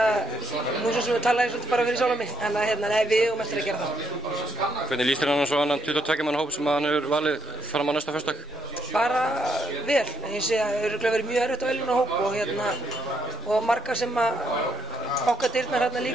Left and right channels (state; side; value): normal; both; correlation 0.79